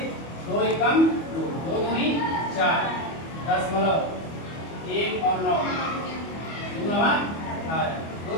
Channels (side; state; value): right; late; 25 ms